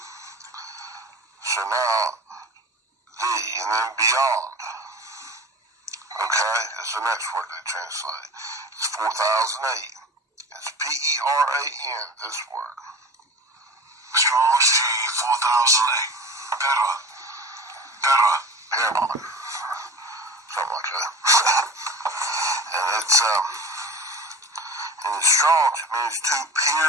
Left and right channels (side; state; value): both; normal; correlation 0.36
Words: So now, thee, and then beyond. Okay, it's the next word they translate. It's 4008. It's P-E-R-A-N, this word. Strong's G 4008. Better. Paramount. Something like that. And it's, in the Strong's, it means to